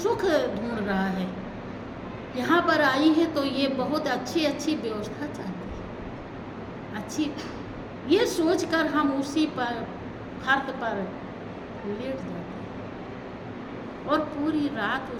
ढूंढ रहा है, यहाँ पर आई है तो ये बहुत अच्छी अच्छी व्यवस्था चाहती है, अच्छी, ये सोचकर हम उसी पर फर्श पर लेट जाते हैं और पूरी रात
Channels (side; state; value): both; identical; correlation 1.00